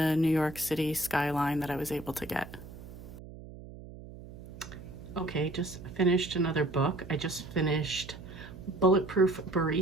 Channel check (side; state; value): right; noise; hum, 15 dB below the sound